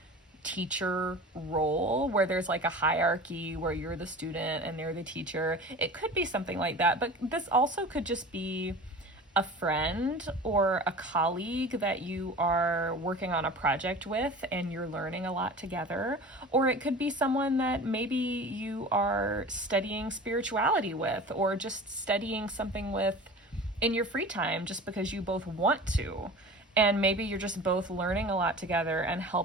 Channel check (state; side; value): normal; both; correlation 0.38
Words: teacher role where there's like a hierarchy where you're the student and they're the teacher. It could be something like that, but this also could just be a friend or a colleague that you are working on a project with and you're learning a lot together. Or it could be someone that maybe you are studying spirituality with, or just studying something with in your free time just because you both want to. And maybe you're just both learning a lot together and